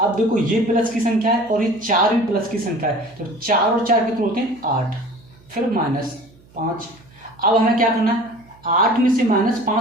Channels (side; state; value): right; noise; hum, 27 dB below the sound